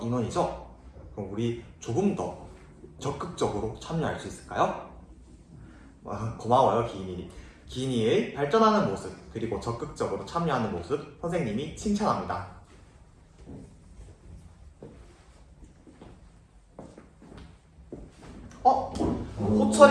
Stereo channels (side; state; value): both; identical; correlation 1.00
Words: 인원이죠. 그럼 우리 조금 더 적극적으로 참여할 수 있을까요? 고마워요, 기인이. 기인이의 발전하는 모습 그리고 적극적으로 참여하는 모습 선생님이 칭찬합니다.